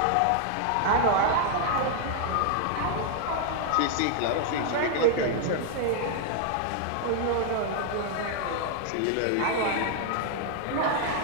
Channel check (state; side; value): different; both; correlation 0.00